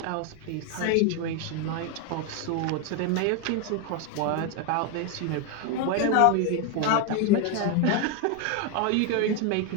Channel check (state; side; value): different; both; correlation 0.01